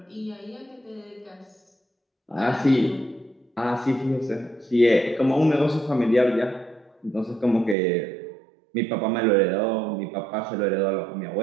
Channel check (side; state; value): left; drops out; at 7.8 s